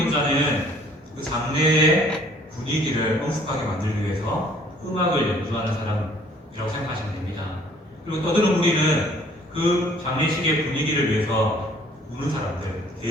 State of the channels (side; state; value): both; normal; correlation 0.58